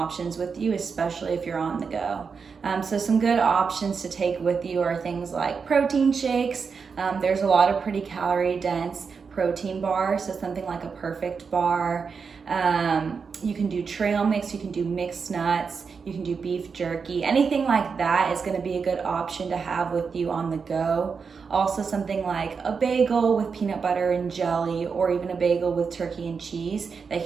with you, especially if you're on the go. So some good options to take with you are things like protein shakes. There's a lot of pretty calorie dense protein bars, so something like a perfect bar. You can do trail mix, you can do mixed nuts, you can do beef jerky. Anything like that is going to be a good option to have with you on the go. Also something like a bagel with peanut butter and jelly, or even a bagel with turkey and cheese that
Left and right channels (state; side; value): quieter; left; 5.6 dB